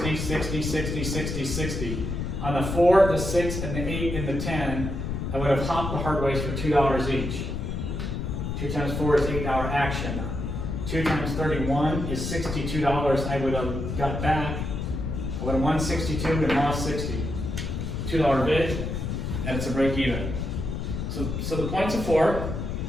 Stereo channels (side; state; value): left; noise; rumble, 3 dB below the sound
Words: 60, 60, 60, 60. On the 4, the 6, and the 8, and the 10, I would have hopped the hard ways for $2 each. 2 times 4 is $8 action. 2 times 31 is $62 I would have got back. I would have won 62 and lost 60. $2 bid, and it's a break even. So the points of 4.